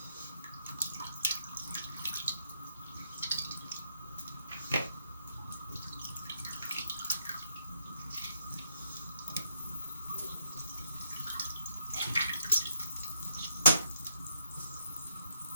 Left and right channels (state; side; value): inverted; both; correlation -0.77